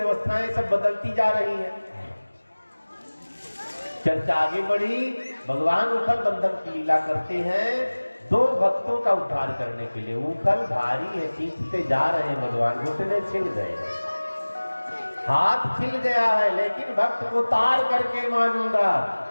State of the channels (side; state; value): both; inverted; correlation -1.00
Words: सब बदलती जा रही हैं। चर्चा आगे बढ़ी। भगवान उखल बंधन की लीला करते हैं दो भक्तों का उद्धार करने के लिए। उखल भारी है, खींचते जा रहे हैं भगवान, घुटने छिल गए, हाथ छिल गया है, लेकिन भक्त को तार करके मानूंगा,